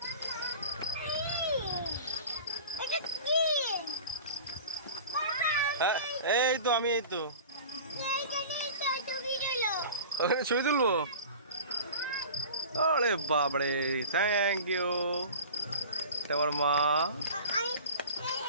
হ্যাঁ এই তো আমি, এই তো ওখানে ছবি তুলবো। আরে বাবরে, থ্যাংক ইউ। তোমার মা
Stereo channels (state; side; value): inverted; both; correlation -0.38